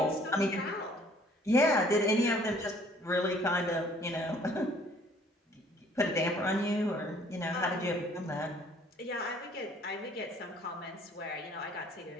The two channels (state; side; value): normal; both; correlation 0.57